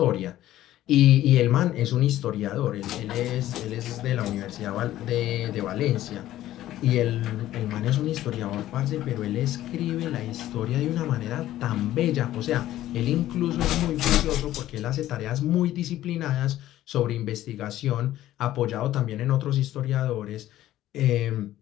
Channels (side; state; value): right; quieter; 13.9 dB